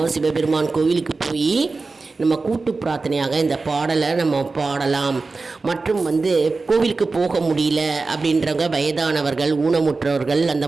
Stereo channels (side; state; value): left; quieter; 3.9 dB